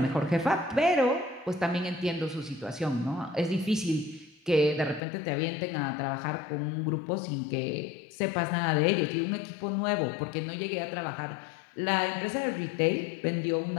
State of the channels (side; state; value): right; drops out; at 5.0 s